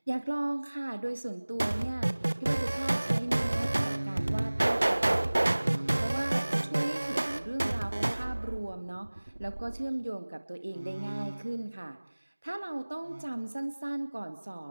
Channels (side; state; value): both; inverted; correlation -1.00